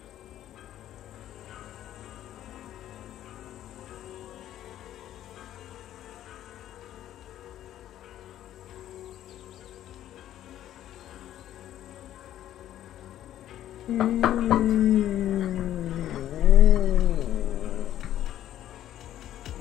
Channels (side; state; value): right; quieter; 12.3 dB